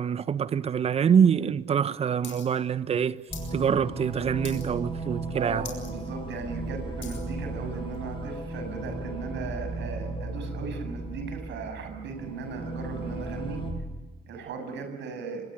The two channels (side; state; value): left; quieter; 6.0 dB